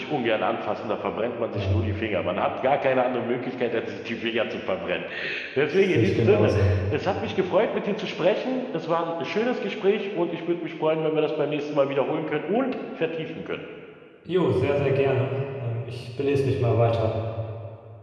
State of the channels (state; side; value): identical; both; correlation 1.00